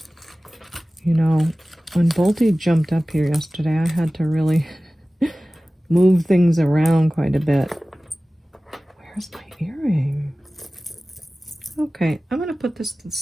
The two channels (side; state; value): both; normal; correlation 0.97